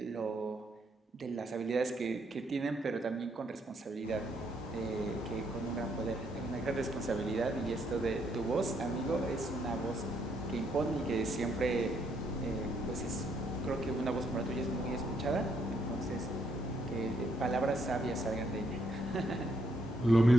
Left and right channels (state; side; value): normal; both; correlation 0.73